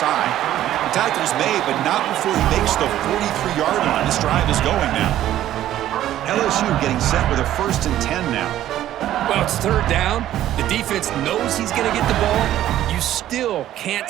The tackle's made, but not before he makes the 43-yard line. This drive is going now. LSU getting set with a 1st and 10 now. Well, it's 3rd down. The defense knows he's going to get the ball. You still can't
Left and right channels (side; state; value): left; quieter; 12.8 dB